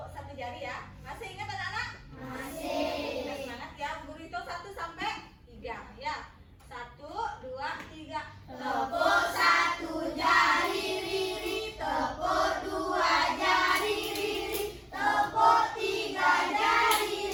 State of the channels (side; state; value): both; identical; correlation 1.00